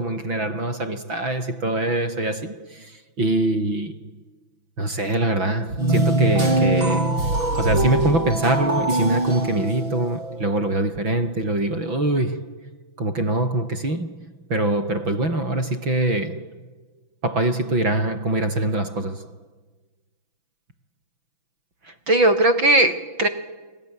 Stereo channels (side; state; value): left; late; 6.0 ms